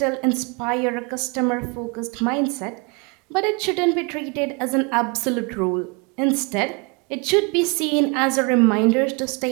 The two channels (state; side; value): quieter; left; 31.0 dB